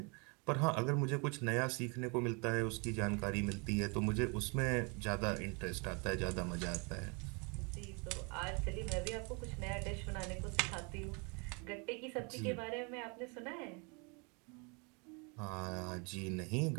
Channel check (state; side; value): quieter; left; 32.9 dB